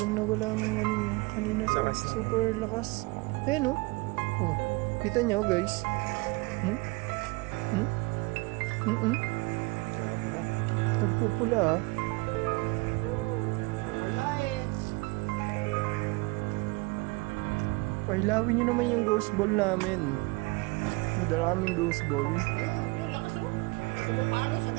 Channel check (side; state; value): left; quieter; 25.4 dB